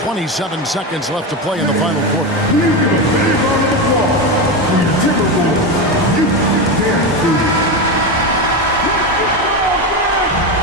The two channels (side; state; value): both; normal; correlation 0.16